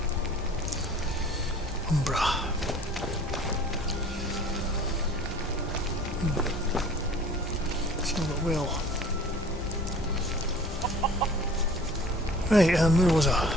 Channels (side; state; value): both; normal; correlation 0.47